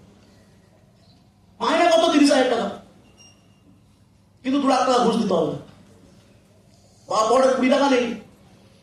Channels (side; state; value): both; identical; correlation 1.00